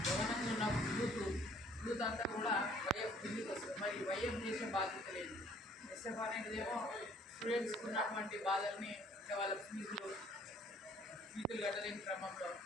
గమనంగా ఉన్న యూత్ అంతా కూడా వైఎఫ్ కిందికి వస్తుంది. మరి వైఎఫ్ చేసే బాధ్యత లేదు. ఎస్ఎఫ్ అనేటిదేమో స్టూడెంట్స్కి ఉన్నటువంటి బాధల్ని అంటే వాళ్ళ ఫీజులు కట్టలేని క్రమంలో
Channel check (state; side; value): normal; both; correlation 0.58